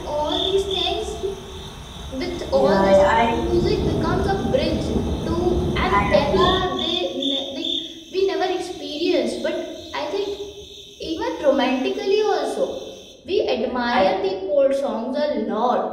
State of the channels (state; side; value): identical; both; correlation 1.00